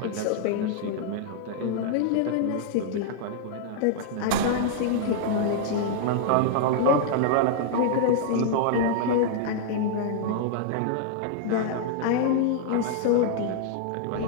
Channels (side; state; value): both; different; correlation -0.01